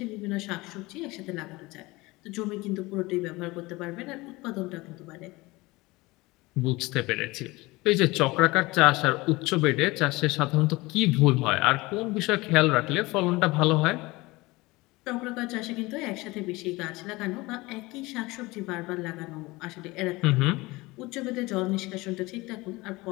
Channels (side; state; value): right; quieter; 21.8 dB